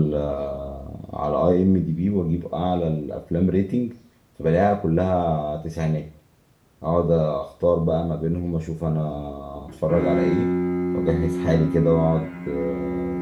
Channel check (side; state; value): both; identical; correlation 1.00